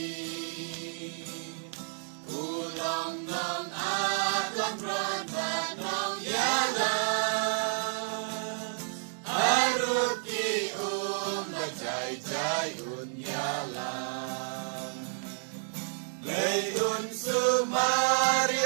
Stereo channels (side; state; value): left; silent; 57 dB below the other